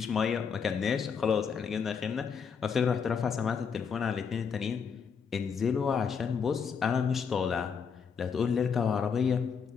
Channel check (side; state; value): right; quieter; 6.4 dB